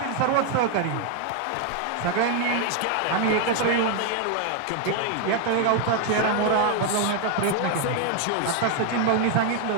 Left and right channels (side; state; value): both; different; correlation 0.01